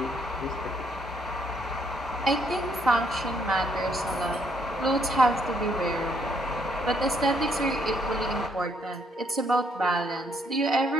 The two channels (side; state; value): both; normal; correlation 0.71